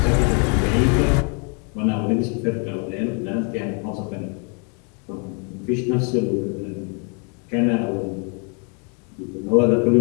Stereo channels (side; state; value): right; quieter; 37.4 dB